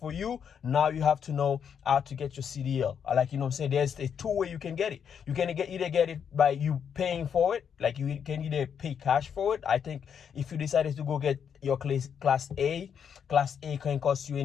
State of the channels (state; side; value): quieter; right; 7.6 dB